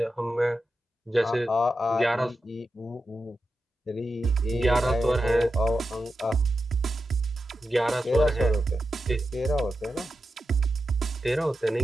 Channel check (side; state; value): both; normal; correlation 0.90